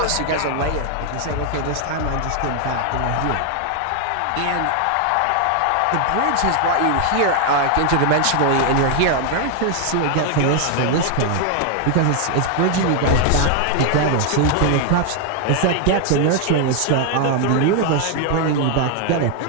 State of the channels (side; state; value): both; different; correlation 0.00